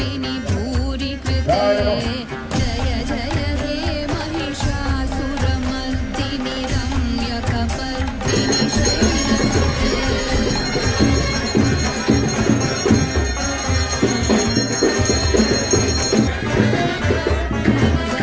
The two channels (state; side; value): identical; both; correlation 1.00